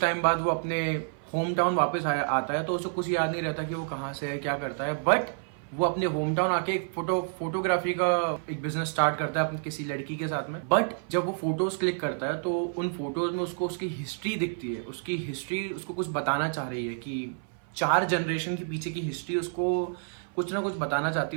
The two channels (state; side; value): silent; left; 56 dB below the other